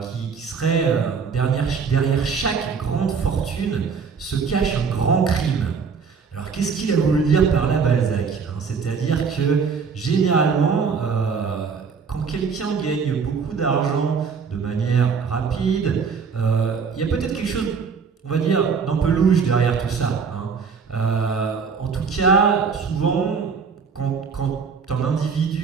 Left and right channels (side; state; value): left; quieter; 5.7 dB